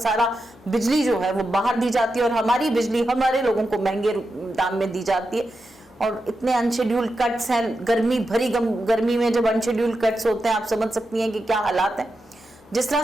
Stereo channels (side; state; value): both; normal; correlation 0.88